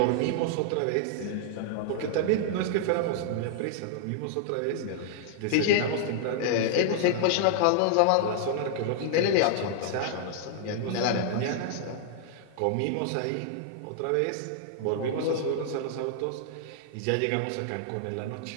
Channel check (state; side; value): different; both; correlation -0.01